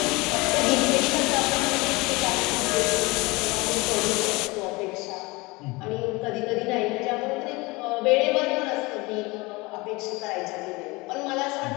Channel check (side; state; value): right; quieter; 24.1 dB